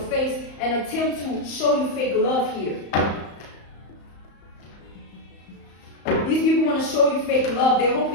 face and attempt to show you fake love here. These people want to show you fake love. They're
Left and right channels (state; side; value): late; right; 34 ms